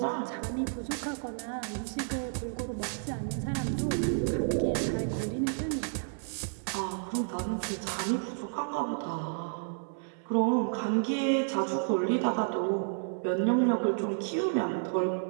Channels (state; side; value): silent; left; 57 dB below the other